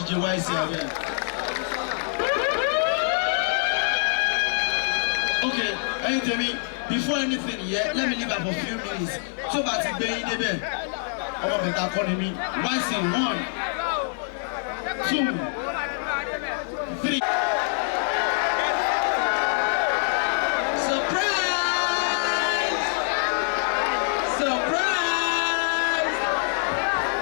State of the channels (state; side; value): silent; right; 62 dB below the other